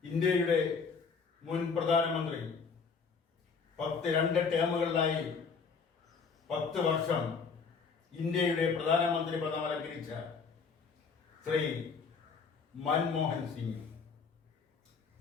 ഇന്ത്യയുടെ മുൻ പ്രധാനമന്ത്രി 2 ടേമുകളിലായി 10 വർഷം ഇന്ത്യയുടെ പ്രധാനമന്ത്രി പദം അലങ്കരിച്ച ശ്രീ മൻമോഹൻ സിംഗ്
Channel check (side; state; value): right; quieter; 5.3 dB